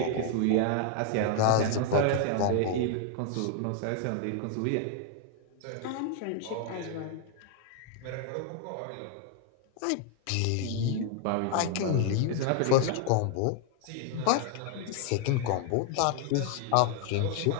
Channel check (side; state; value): both; different; correlation 0.00